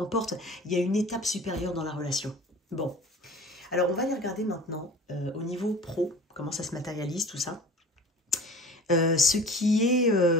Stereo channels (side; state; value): both; normal; correlation 0.41